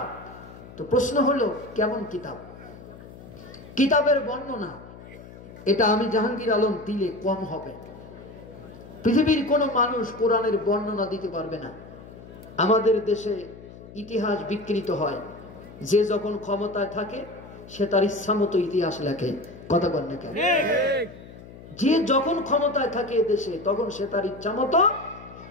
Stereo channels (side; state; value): left; noise; hum, 17 dB below the sound